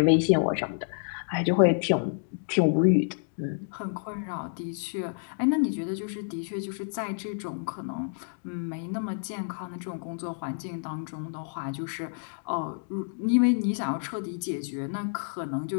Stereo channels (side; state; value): right; silent; digital silence